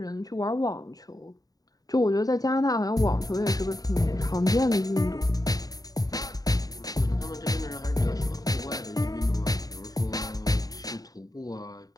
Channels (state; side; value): late; right; 0.18 ms